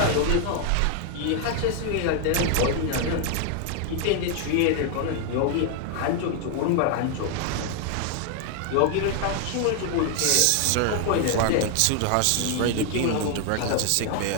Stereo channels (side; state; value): both; different; correlation 0.00